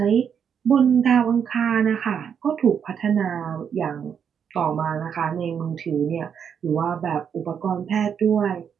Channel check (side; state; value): left; quieter; 7.6 dB